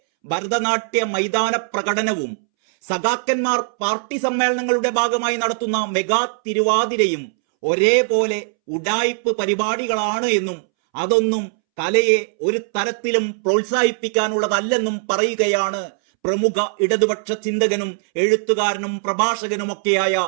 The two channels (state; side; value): silent; left; 66 dB below the other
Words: ഭരതനാട്യ മൈതാന പ്രകടനവും സഖാക്കന്മാർ പാർട്ടി സമ്മേളനങ്ങളുടെ ഭാഗമായി നടത്തുന്ന മെഗാ തിരുവാതിരയും ഒരേപോലെ ഉഡായിപ്പ് പരിപാടികളാണ് എന്നും അതൊന്നും കലയെ ഒരു തരത്തിലും പ്രോത്സാഹിപ്പിക്കാനുള്ളതല്ലെന്നും പറയുകയാണ് പ്രമുഖ ഇടതുപക്ഷ ചിന്തകനും എഴുത്തുകാരനും പ്രഭാഷകനുമൊക്കെയായ